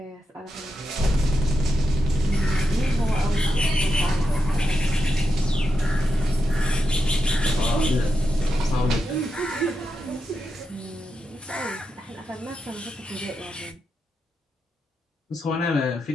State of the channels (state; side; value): normal; both; correlation 0.86